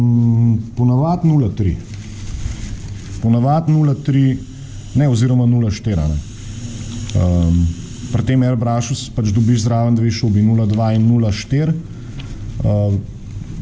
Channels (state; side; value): identical; both; correlation 1.00